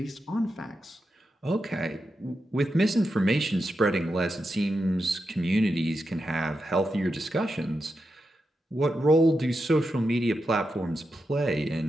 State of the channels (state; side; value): normal; both; correlation 0.87